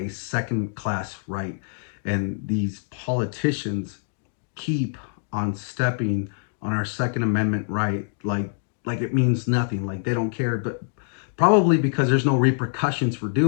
second class right. And these politicians keep on stepping on our Second Amendment right like it means nothing, like they don't care, but probably because there's no repercussions for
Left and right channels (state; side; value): silent; right; digital silence